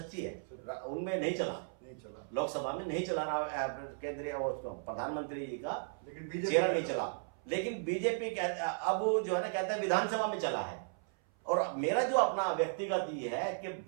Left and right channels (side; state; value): left; silent; 54 dB below the other